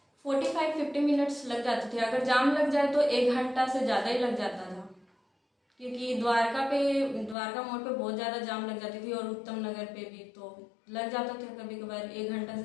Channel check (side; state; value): right; drops out; at 7.4 s